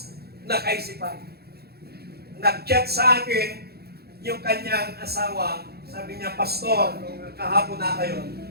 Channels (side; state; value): left; late; 0.46 ms